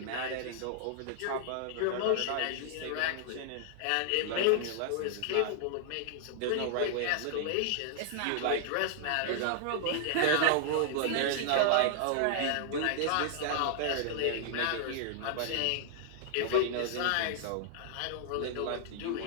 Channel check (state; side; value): different; both; correlation -0.01